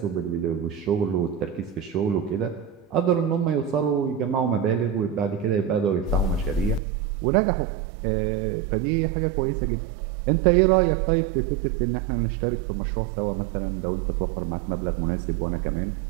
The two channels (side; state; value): left; drops out; at 6.8 s